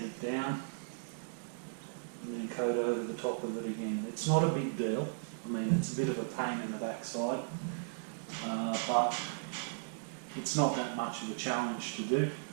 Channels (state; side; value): silent; left; digital silence